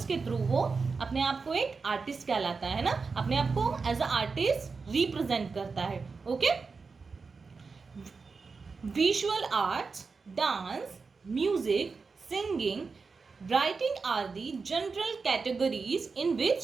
के through वो अपने आप को एक आर्टिस्ट कहलाता है ना, अपने आप को एज अ आर्टिस्ट रिप्रेजेंट करता है. Okay, visual arts, dance, music, singing, writing are the general categories in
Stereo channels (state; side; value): quieter; left; 4.7 dB